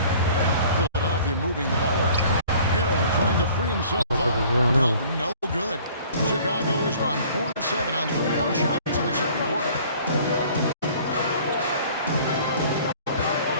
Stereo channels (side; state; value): both; inverted; correlation -0.52